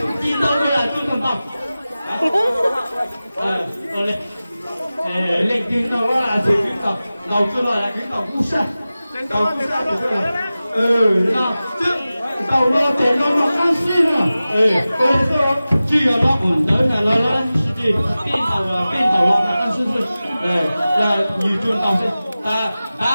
chi đâu là tôi con tàu lên tiếng đâu là chỉ cái tàu đầu chưa là cái tàu cú sa tàu cú sa được rồi nó chứ tàu nó để nó ăn xuyên rồi bây giờ chỉ là nó ổn tới là nó chỉ bên tàu nó ăn xuyên là nhiều trường tàu sẽ ta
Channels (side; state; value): both; inverted; correlation -0.96